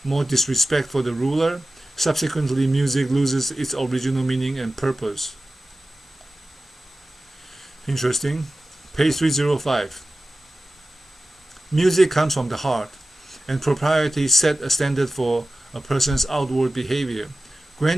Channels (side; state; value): both; normal; correlation 0.95